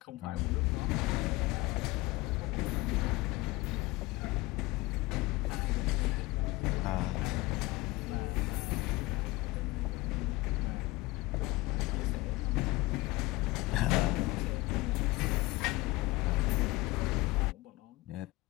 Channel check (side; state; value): right; quieter; 20.8 dB